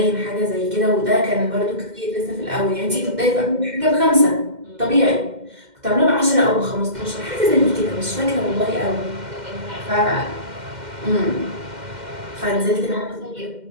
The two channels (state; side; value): late; left; 2.1 ms